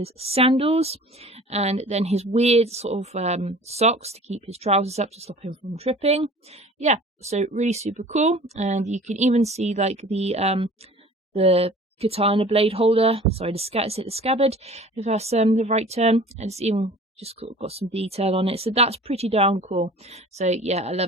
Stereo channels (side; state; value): both; normal; correlation 0.45